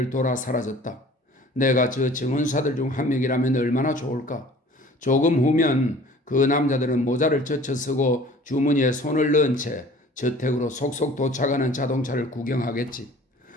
돌아 사라졌다. 내가 저 정원사들 중 한 명이라면 얼마나 좋을까. 조금 후면 그 남자들은 모자를 젖혀 쓰고 주머니에 손을 넣은 채 저택으로 속속 도착하는 자동차를 구경하겠지.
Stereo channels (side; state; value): both; normal; correlation 0.48